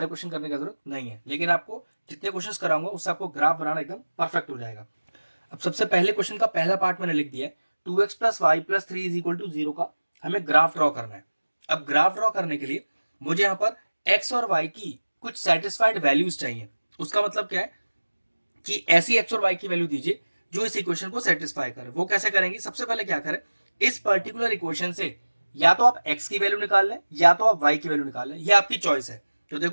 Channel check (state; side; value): inverted; both; correlation -1.00